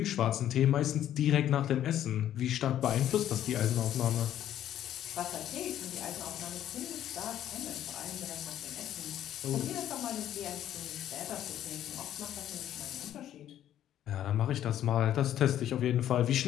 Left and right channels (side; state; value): right; quieter; 11.4 dB